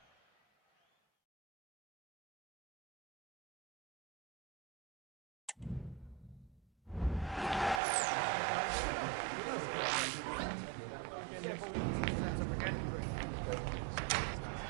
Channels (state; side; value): drops out; left; at 7.8 s